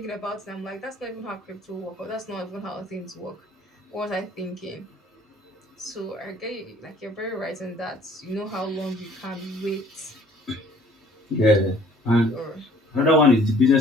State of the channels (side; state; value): both; normal; correlation 0.56